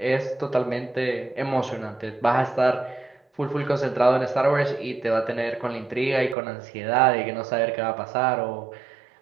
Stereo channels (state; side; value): drops out; left; at 6.4 s